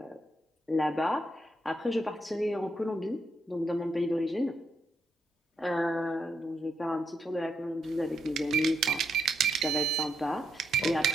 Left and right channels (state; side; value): normal; both; correlation 0.80